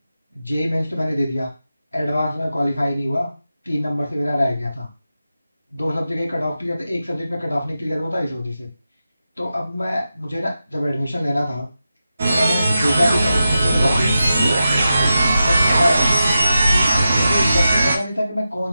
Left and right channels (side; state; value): both; inverted; correlation -0.90